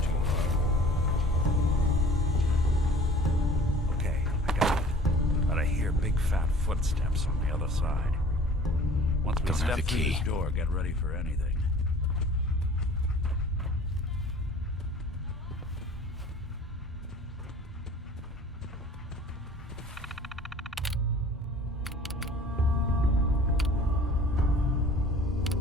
too hard. Okay, I got it. But I hear big fat footsteps on the other side. Once we Don't have step the through key. this door, get ready for anything.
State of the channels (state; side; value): normal; both; correlation 0.48